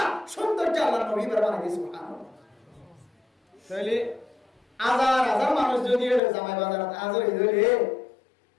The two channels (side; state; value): right; drops out; at 6.2 s